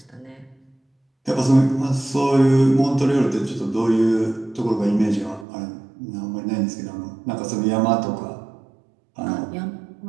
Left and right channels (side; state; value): left; drops out; at 5.5 s